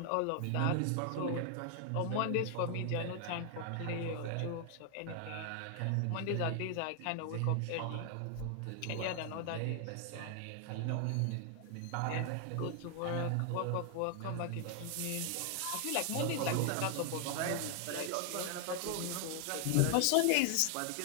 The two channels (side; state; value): both; different; correlation 0.00